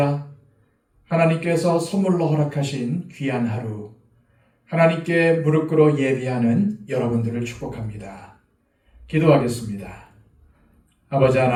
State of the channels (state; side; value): identical; both; correlation 1.00